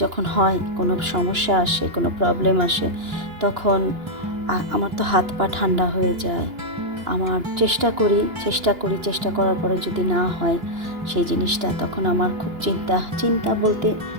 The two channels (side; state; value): left; late; 2.9 ms